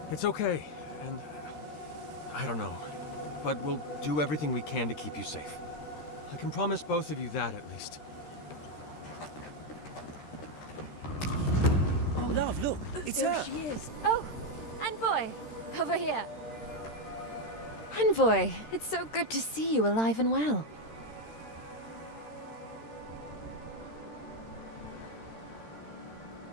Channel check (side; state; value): right; late; 13 ms